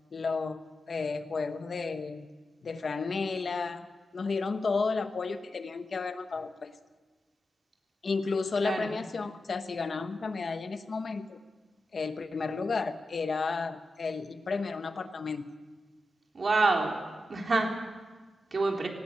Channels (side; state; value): both; normal; correlation 0.90